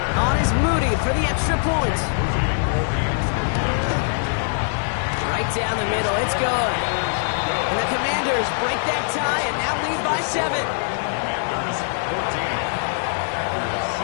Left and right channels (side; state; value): right; silent; digital silence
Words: On is Moody for the extra point. Right down the middle, it's good. And the Commanders break that tie and now lead by 7.